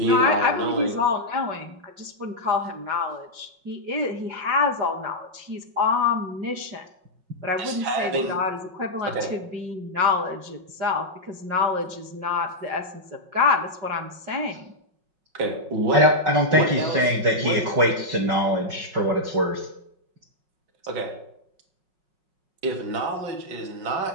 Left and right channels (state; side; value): late; left; 5.4 ms